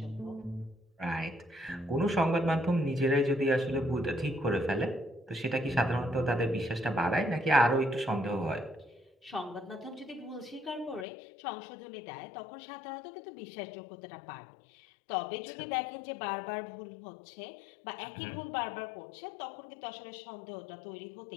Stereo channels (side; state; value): right; drops out; at 11.1 s